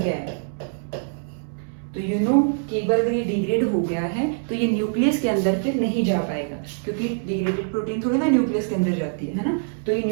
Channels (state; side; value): silent; left; 63 dB below the other